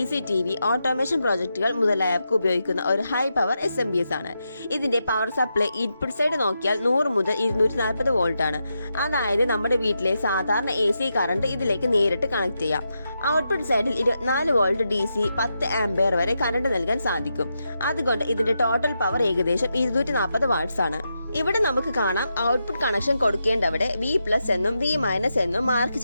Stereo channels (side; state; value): both; inverted; correlation -0.86